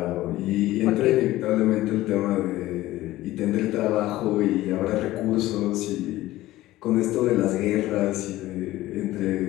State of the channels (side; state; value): right; quieter; 16.4 dB